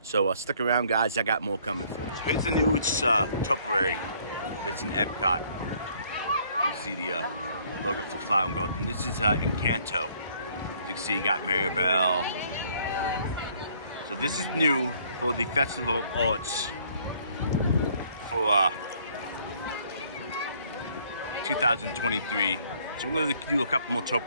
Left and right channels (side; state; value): both; inverted; correlation -0.62